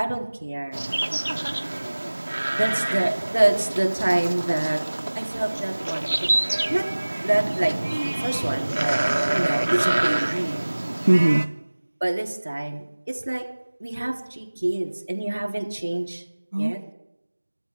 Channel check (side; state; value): both; inverted; correlation -1.00